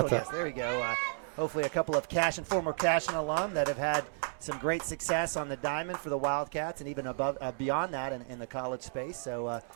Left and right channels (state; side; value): silent; left; digital silence